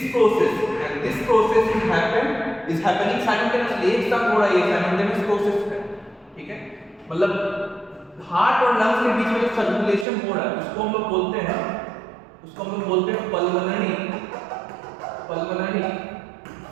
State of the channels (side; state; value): left; drops out; at 10.1 s